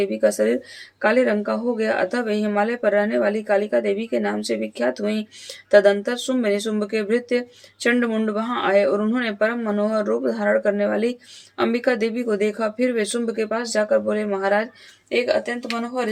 का शरीर काले रंग का हो गया, अतः वे हिमालय पर रहने वाली कालिका देवी के नाम से विख्यात हुई। तदंतर शुंभ निशुंभ के भृत्य चंडमुंड वहां आए और उन्होंने परम मनोहर रूप धारण करने वाली अंबिका देवी को देखा। फिर वे शुंभ के पास जाकर बोले, महाराज, एक अत्यंत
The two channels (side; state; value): both; identical; correlation 1.00